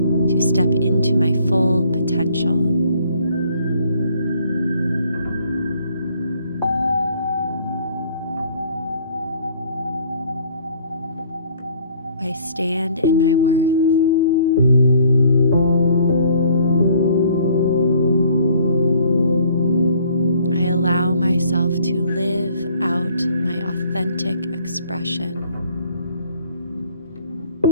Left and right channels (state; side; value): inverted; both; correlation -0.59